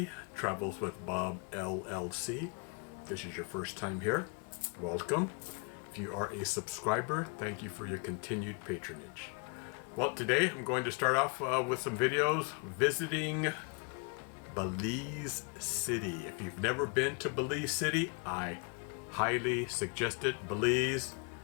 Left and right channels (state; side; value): quieter; right; 35.9 dB